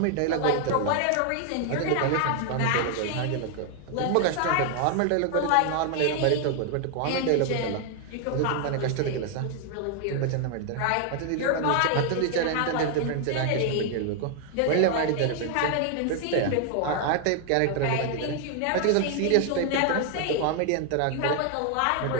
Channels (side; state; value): both; different; correlation 0.00